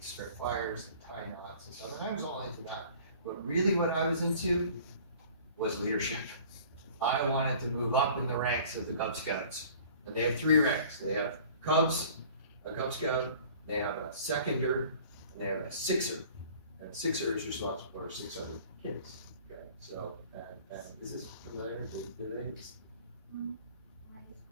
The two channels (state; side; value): inverted; both; correlation -0.48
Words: start fires and tie knots and stuff. And I was all into that. But really what I was into was leadership. I wanted to move up in the ranks of the Cub Scouts. And they have 3 ranks. They have Cubs, a Cub Scout, they have a seconder, and they have a sixer. And a sixer is responsible for 6 other kids. Okay, so, and is this familiar?